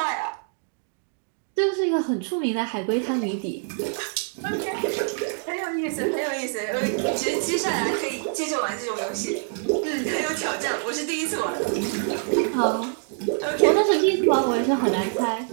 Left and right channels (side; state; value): left; silent; 62 dB below the other